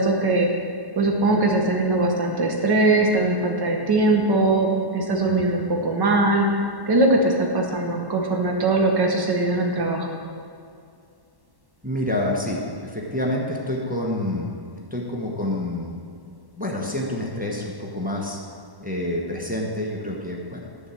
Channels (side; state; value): left; late; 1.1 ms